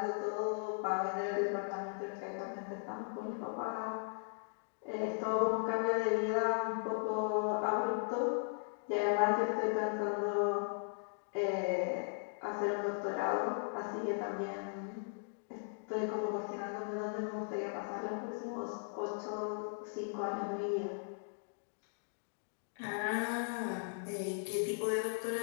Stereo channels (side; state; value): right; silent; digital silence